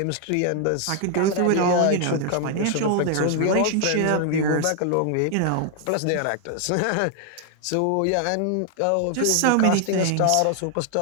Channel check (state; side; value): different; both; correlation 0.00